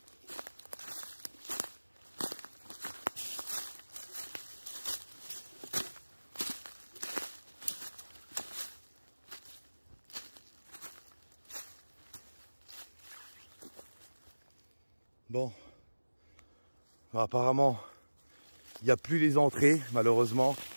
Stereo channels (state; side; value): inverted; both; correlation -1.00